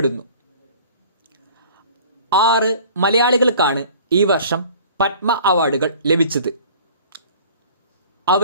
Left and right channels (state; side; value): inverted; both; correlation -0.47